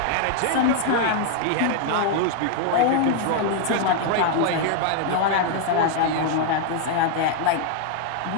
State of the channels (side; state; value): both; different; correlation 0.00